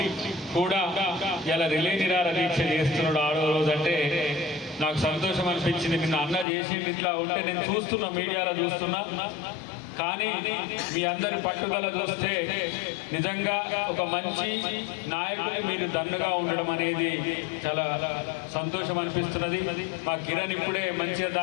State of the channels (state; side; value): drops out; right; at 6.5 s